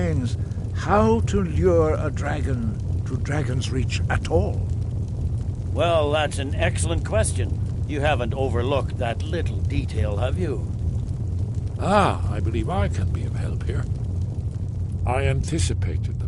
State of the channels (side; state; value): both; identical; correlation 1.00